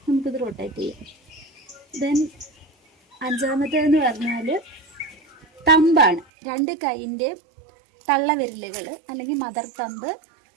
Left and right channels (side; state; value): left; drops out; at 6.2 s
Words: നമുക്കിത് റൊട്ടേറ്റ് ചെയ്യാം. ദെൻ അഞ്ചാമത്തേതെന്ന് പറഞ്ഞാൽ തമ്പാണ്. 2 കൈയിൻ്റെ തള്ളവിരലുകൾ അല്ലെങ്കിൽ മദർ തമ്പ്